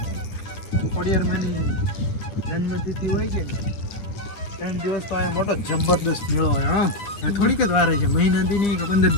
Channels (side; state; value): right; late; 9.7 ms